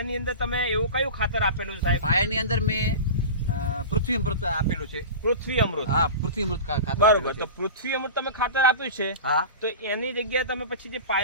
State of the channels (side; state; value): both; inverted; correlation -0.31